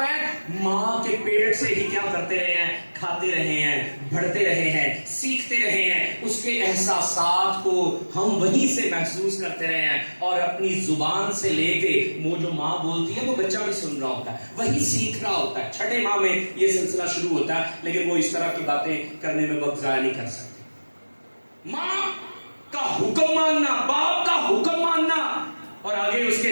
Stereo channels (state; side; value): inverted; both; correlation -1.00